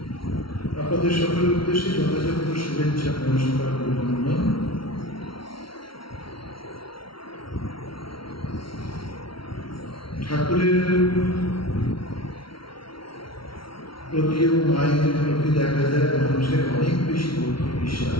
আপনাদের সকলের উদ্দেশ্যে যথাযথ শুভেচ্ছা নমস্কার অভিনন্দন। ঠাকুরের প্রতি এবং মায়ের প্রতি দেখা যায় মানুষের অনেক বেশি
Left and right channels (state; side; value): late; right; 0.74 ms